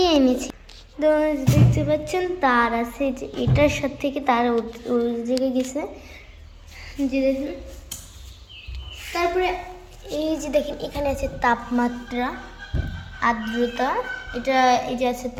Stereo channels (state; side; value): identical; both; correlation 1.00